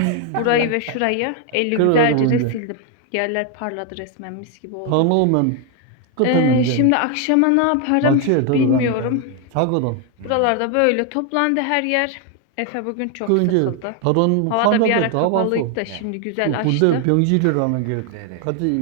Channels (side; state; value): both; different; correlation 0.01